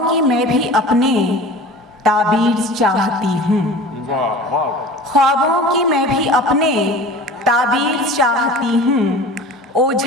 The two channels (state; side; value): normal; both; correlation 0.39